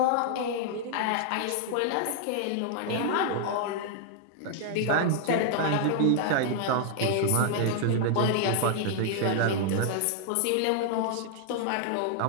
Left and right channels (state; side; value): different; both; correlation 0.00